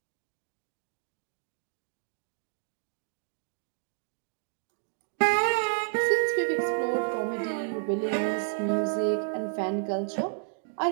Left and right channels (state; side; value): silent; left; 57 dB below the other